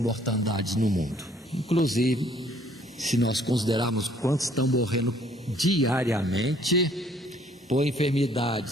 no mundo, inclusive se nós considerarmos quantos estão morrendo diariamente por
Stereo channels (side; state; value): both; normal; correlation 0.61